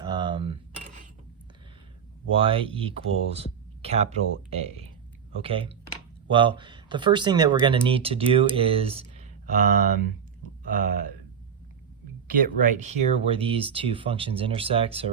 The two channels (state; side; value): quieter; left; 7.5 dB